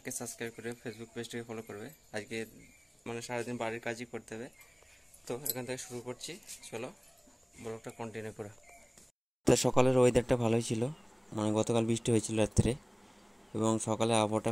সাবস্ক্রাইব করে ফেসবুক পেজটিকে ফলো করবে। আজকে সারাদিন বাড়ির কাজই করতে হবে। তো এখান থেকে শুরু করছি, চলো ব্লগটা কন্টিনিউ করো। তো সকালের ওয়েদারটা ভালোই ছিল, গতকাল বৃষ্টি হয়েছিল রাত্রে এবং সকালে আবহাওয়াটা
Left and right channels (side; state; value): both; identical; correlation 1.00